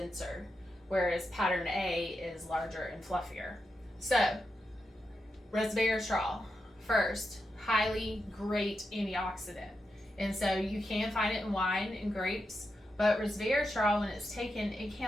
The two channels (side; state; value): both; normal; correlation 0.86